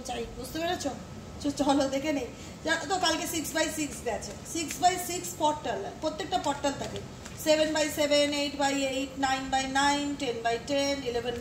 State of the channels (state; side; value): identical; both; correlation 1.00